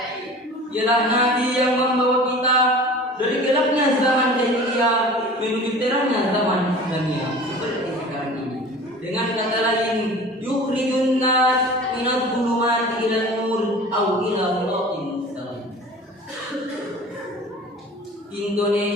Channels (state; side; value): normal; both; correlation 0.41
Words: Ialah Nabi yang membawa kita dari gelapnya zaman jahiliyah menuju terangnya zaman Islamiyah seperti sekarang ini. Dengan kata lain, yukhrijun nas minadh dhulumati ila nur aw ila siratin mustaqim.